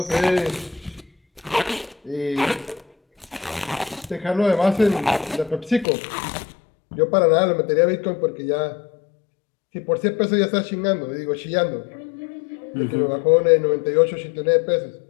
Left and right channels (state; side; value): drops out; right; at 5.9 s